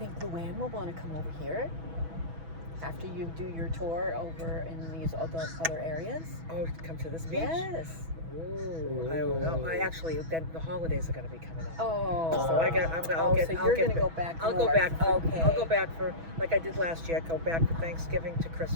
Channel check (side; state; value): left; late; 6.1 ms